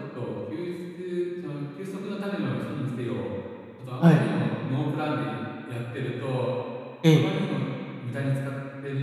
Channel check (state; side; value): identical; both; correlation 1.00